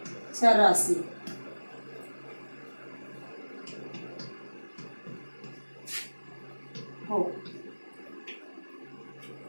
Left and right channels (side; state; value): both; inverted; correlation -1.00